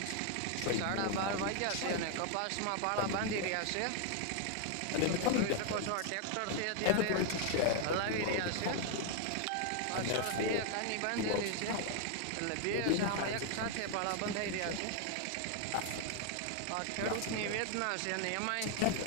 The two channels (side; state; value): both; different; correlation 0.00